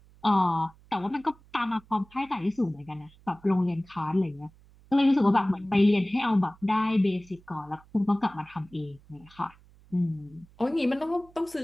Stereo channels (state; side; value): noise; right; hum, 27 dB below the sound